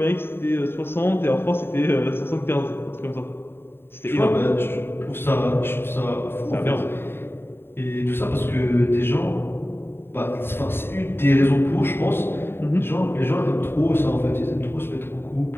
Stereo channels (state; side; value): late; right; 0.11 ms